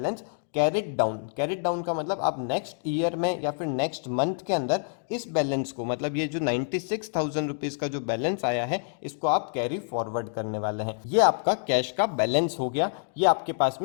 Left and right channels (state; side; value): silent; right; digital silence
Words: carried down. Carried down का मतलब आप नेक्स्ट ईयर में या फिर नेक्स्ट मंथ के अंदर इस बैलेंस को, मतलब ये जो 96,000 रुपीज़ का जो बैलेंस आया है इसको आप कैरी फॉरवर्ड करने वाले हैं। ये आपका कैश का बैलेंस हो गया, ये आपके पास